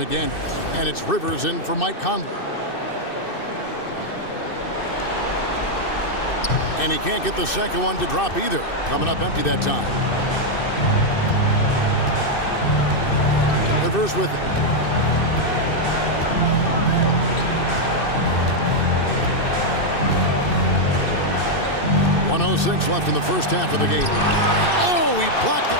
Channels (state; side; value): late; right; 2.6 ms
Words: And it's Rivers in for Mike Conley. And he can't get the second one to drop either. Coming up empty that time. Rivers with it. .106 left in the first half of the game. Oh, he blocked it